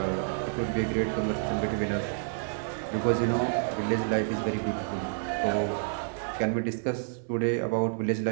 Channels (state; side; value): silent; left; digital silence